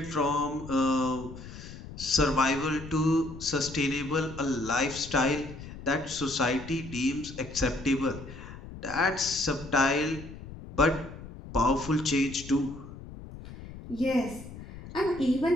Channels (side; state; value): left; noise; rumble, 14 dB below the sound